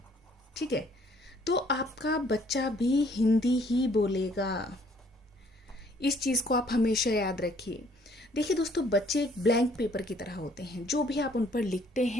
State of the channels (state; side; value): normal; both; correlation 0.62